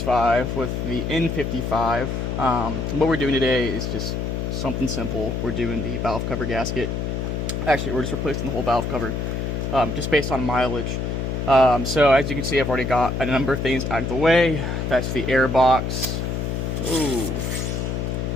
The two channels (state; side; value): noise; left; hum, 2 dB below the sound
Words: with the N55. What we're doing today is just something simple. We're doing the valve cover gasket. Actually, we're just replacing the whole valve cover, just based on mileage. So as you can see, I've already got a number of things out of the way. That's the air box. Ooh,